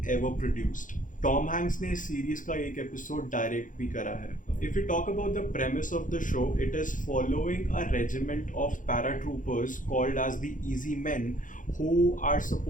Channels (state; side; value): late; right; 0.38 ms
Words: ever produced. Tom Hanks ने इस series का एक episode direct भी करा है. If you talk about the premise of the show, it is following a regiment of paratroopers called as the easy men who are